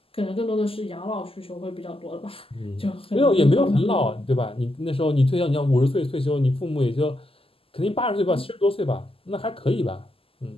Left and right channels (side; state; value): right; late; 0.27 ms